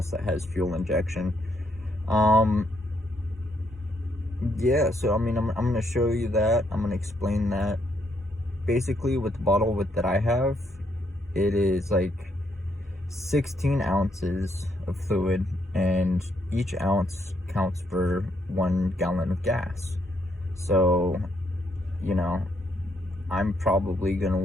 that has fuel injection. Yeah, so I mean, I'm gonna show you that. I'm gonna explain that. Basically, with the bottle that I have, it is like 16 ounces of fluid, and each ounce counts for 1 gallon of gas. So, I'm probably gonna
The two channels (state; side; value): normal; both; correlation 0.74